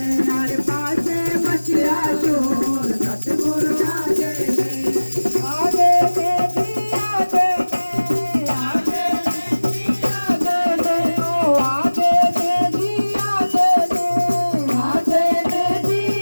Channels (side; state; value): both; inverted; correlation -1.00